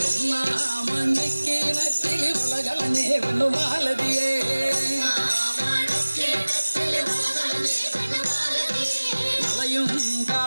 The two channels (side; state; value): both; inverted; correlation -1.00